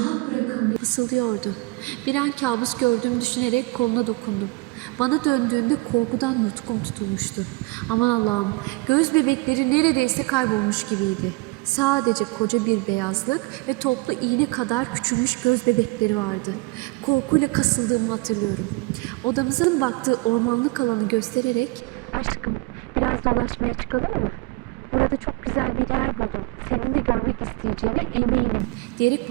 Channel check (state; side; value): quieter; left; 24.7 dB